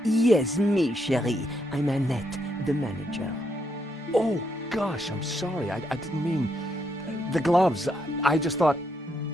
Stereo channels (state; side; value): normal; both; correlation 0.77